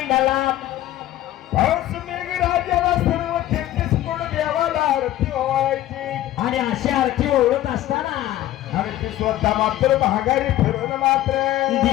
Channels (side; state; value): right; quieter; 14.2 dB